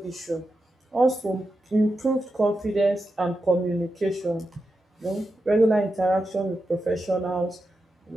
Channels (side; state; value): both; normal; correlation 0.88